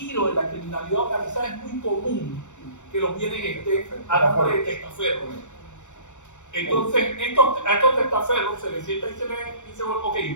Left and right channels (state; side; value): late; right; 0.84 ms